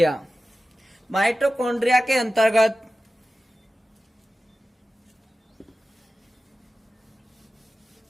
माइटोकॉन्ड्रिया के अंतर्गत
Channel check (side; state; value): both; normal; correlation 0.94